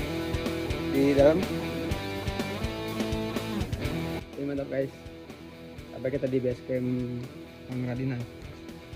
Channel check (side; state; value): both; identical; correlation 1.00